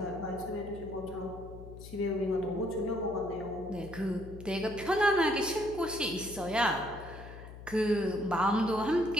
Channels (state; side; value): noise; left; hum, 14 dB below the sound